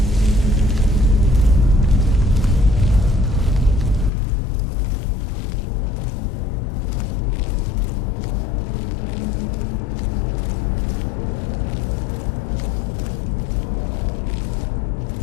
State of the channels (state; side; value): drops out; right; at 4.1 s